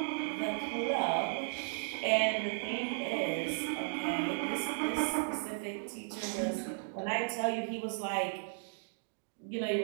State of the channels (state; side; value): silent; left; digital silence